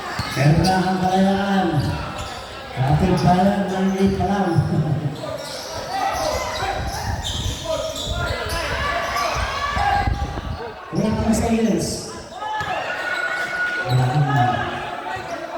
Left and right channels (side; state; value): both; identical; correlation 1.00